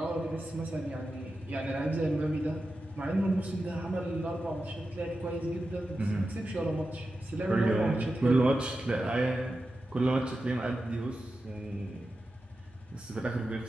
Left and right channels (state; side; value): normal; both; correlation 0.91